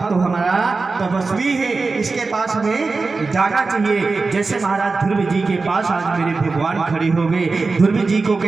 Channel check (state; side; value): quieter; left; 4.0 dB